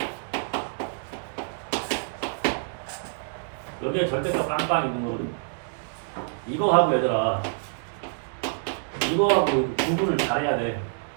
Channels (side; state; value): left; silent; digital silence